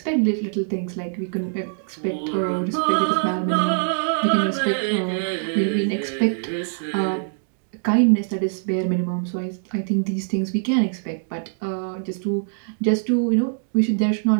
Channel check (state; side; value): silent; left; digital silence